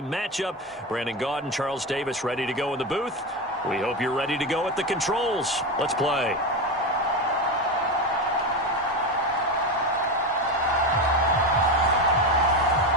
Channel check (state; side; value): normal; both; correlation 0.17